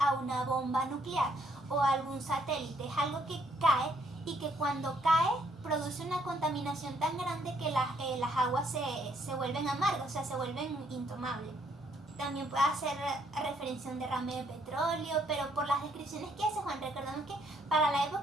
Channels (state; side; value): normal; both; correlation 0.69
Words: una bomba nuclear o a algún satélite. Es algo que cae y que cuando cae produce una contaminación tan grande que las aguas se vuelven amargas, o sea, se vuelven intomables. También puede hacer referencia a un derrame de petróleo, pero por las descripciones que hace Juan, recordamos que para la